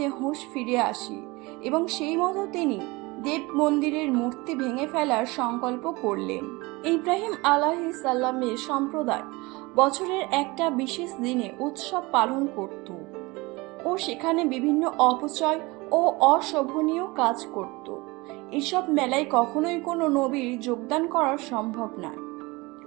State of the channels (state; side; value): quieter; left; 23.8 dB